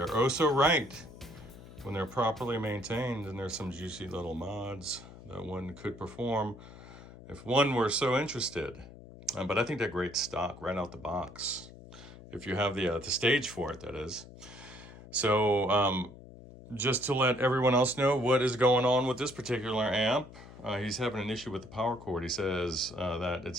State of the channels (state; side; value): noise; left; hum, 17 dB below the sound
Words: oh so right when they're properly maintained. And there's some juicy little mods that one could perform if one were so interested. But I think they're great stock right out the box. If you have the stage for it, that is. So just to let everyone else know what is going on with this particular amp, he's having an issue with the power cord. He says that